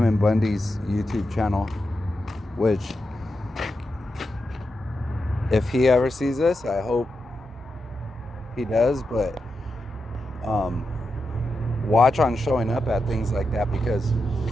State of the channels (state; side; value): normal; both; correlation 0.87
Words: Bundy's YouTube channel, which if he ever sees this, I hope he does, but watch on showing up at things like that, because